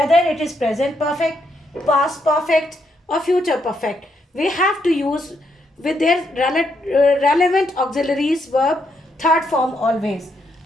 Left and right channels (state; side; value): normal; both; correlation 0.77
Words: it is present perfect, past perfect or future perfect, we have to use with their relevant auxiliaries verb third form always.